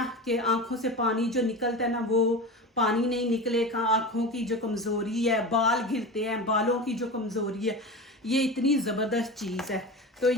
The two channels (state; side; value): normal; both; correlation 0.28